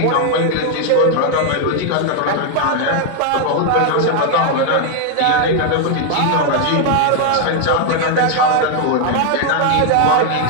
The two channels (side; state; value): both; different; correlation 0.00